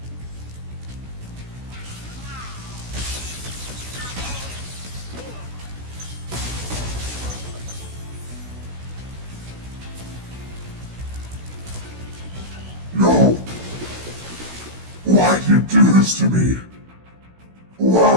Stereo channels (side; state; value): left; late; 16 ms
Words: No! Why do you do this to me?